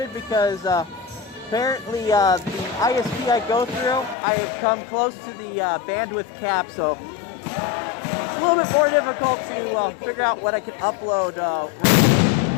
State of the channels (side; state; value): right; drops out; at 4.2 s